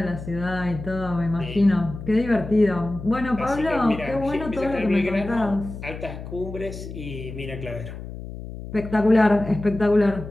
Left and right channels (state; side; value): noise; left; hum, 11 dB below the sound